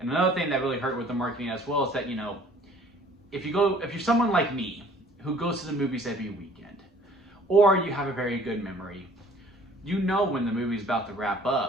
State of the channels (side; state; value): both; normal; correlation 0.54